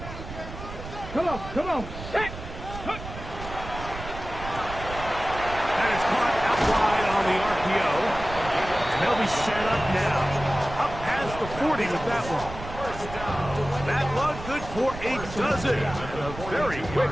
Come on, set! That is caught out wide on the RPO. And they'll be set up now. Up past the 40 with that one. That one good for a dozen. A very quick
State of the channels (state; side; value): noise; right; rumble, 11 dB below the sound